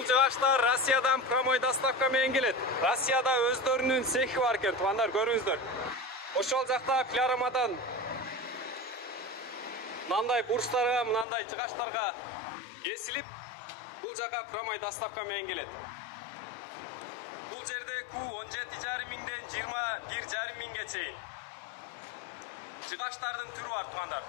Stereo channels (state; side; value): drops out; right; at 11.2 s